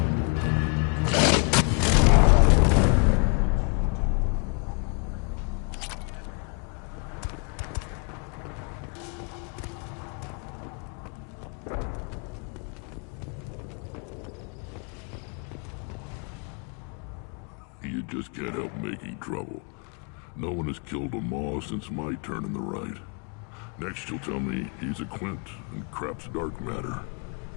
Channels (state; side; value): quieter; right; 36.3 dB